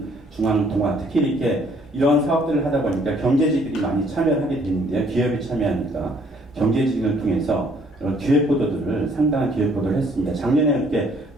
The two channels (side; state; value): both; normal; correlation 0.62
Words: 특히 이렇게 이러한 사업들을 하다 보니까 경제지들이 많이 참여를 하게 되는데요. 기업이 참여하니까 경제지를 통해서 이런 기획보도들을 상당한 기획보도를 했습니다. 작년에 이렇게